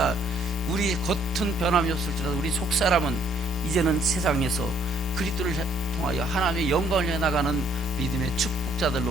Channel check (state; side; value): normal; both; correlation 0.65